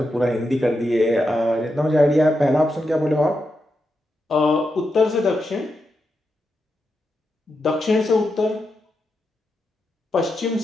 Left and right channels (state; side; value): normal; both; correlation 0.86